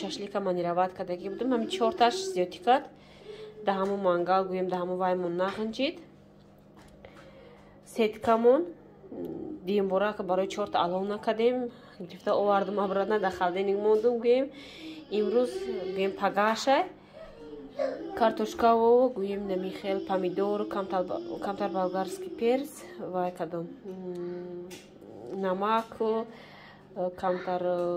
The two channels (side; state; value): both; identical; correlation 1.00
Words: шашлика манироват кардаги будум. ҳамин 4таш зиёдӣ кард. Да ҳамун мангал гӯем да ҳамун ваймон нағинҷид. Сеткамон диюмбора барои 4та алов накардем. Гирифта овардум обратно да халденник мондум гӯем. Имрӯз гӯем пагашай картошкаву гӯем намихел помидор камтар болгарский перец вай кадом намак камтар